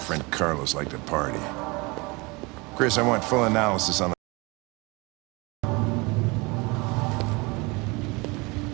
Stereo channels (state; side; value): quieter; left; 26.0 dB